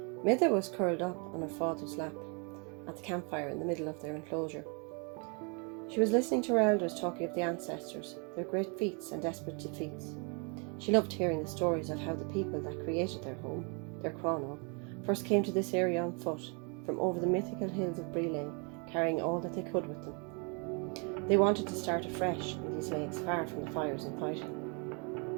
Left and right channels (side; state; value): left; quieter; 34.8 dB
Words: Mide was curled up on her father's lap at the campfire in the middle of their enclosure. She was listening to her elders talking of the ancestors, their great feats and desperate defeats. She loved hearing the stories of how the people that created their home, their Cronach, first came to this area on foot, from over the mythical hills of Brile, carrying all that they could with them. They wanted to start afresh in these lakes, far from the fires and fighting.